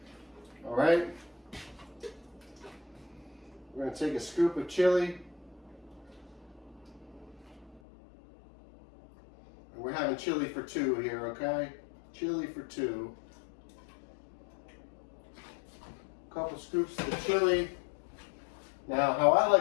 All right. We're gonna take a scoop of chili. And we're having chili for two here, okay? Chili for two. A couple scoops of the chili. Now, how I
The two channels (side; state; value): right; drops out; at 7.8 s